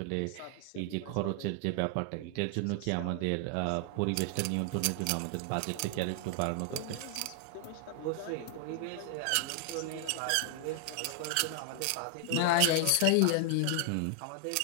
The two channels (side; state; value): both; different; correlation 0.00